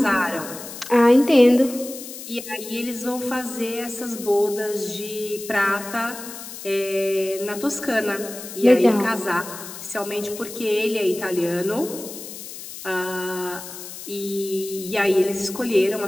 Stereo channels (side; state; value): left; noise; hiss, 12 dB below the sound